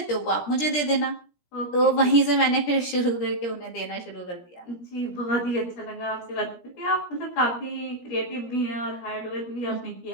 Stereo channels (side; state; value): right; late; 17 ms